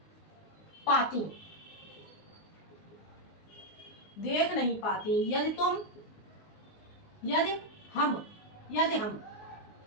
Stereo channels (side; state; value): right; late; 19 ms